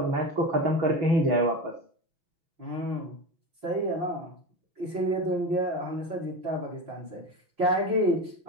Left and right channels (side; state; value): left; late; 6.1 ms